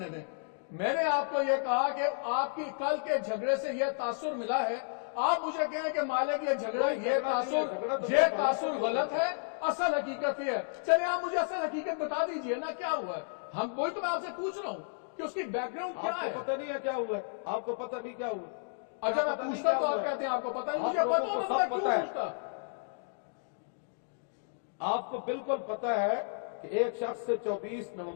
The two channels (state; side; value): silent; right; digital silence